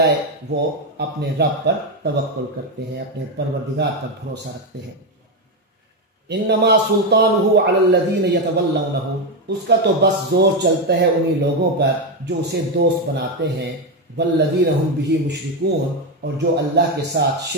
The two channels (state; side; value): normal; both; correlation 0.08